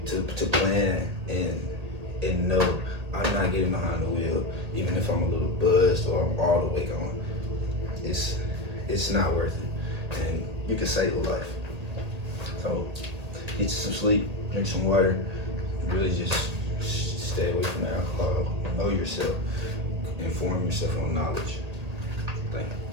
to plan and know I'm not getting behind the wheel, even if I'm a little buzzed or I'm all the way gone. It's not worth it, and you can save a life. So get you some sleep, drink some water, really just stay away from alcohol. Know yourself, inform yourself on knowledge. Thank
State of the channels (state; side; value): late; left; 1.8 ms